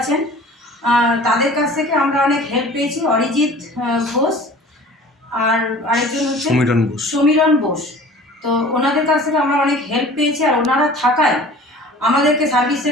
তাদের কাছ থেকে আমরা অনেক হেল্প পেয়েছি। অরিজিৎ ঘোষ আর আরেকজন হচ্ছে সমীরণ বোস। তো ওনাদের কাছ থেকে আমরা অনেক হেল্প পেয়েছি, আর ওনারা থাকায় আমাদেরকে সার্ভিস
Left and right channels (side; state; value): both; normal; correlation 0.44